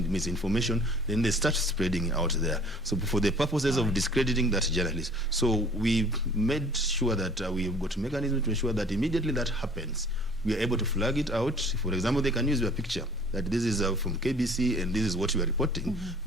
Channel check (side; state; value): both; normal; correlation 0.51